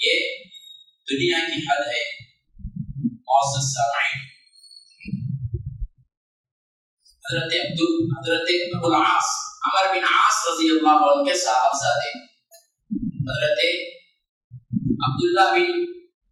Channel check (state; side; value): identical; both; correlation 1.00